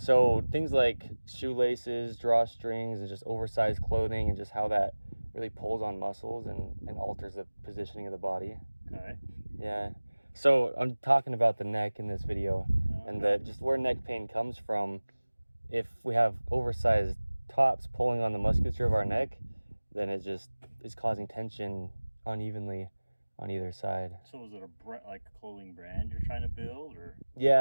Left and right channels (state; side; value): inverted; both; correlation -1.00